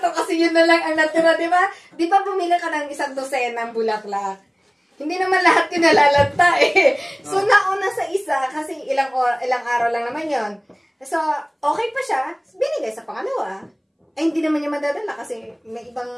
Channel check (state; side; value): identical; both; correlation 1.00